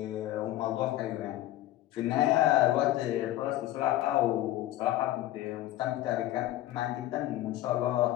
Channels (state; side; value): quieter; right; 14.5 dB